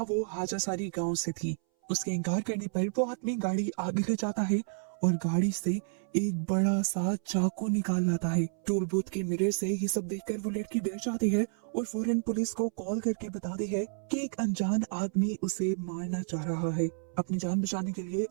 वो हाजासारी गांव से थी। उसके इनकार करने पर वो आदमी गाड़ी आगे ले जाता है और गाड़ी से एक बड़ा सा चाकू निकाल लाता है। टोल बूथ के मिरर से ये सब देखकर वो लड़की डर जाती है और फौरन पुलिस को कॉल करके बताती है कि एक अनजान आदमी उसे मारना चाह रहा है। अपनी जान बचाने के लिए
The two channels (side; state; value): left; silent; 57 dB below the other